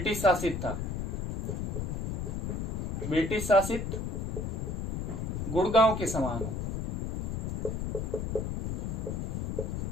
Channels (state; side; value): noise; left; rumble, 1 dB below the sound